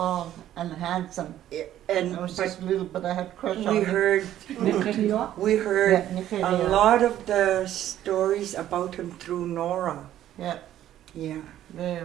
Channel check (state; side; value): quieter; left; 12.2 dB